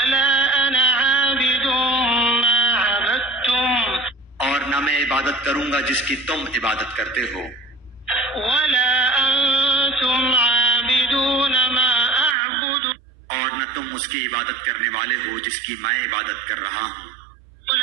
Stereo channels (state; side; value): drops out; left; at 12.4 s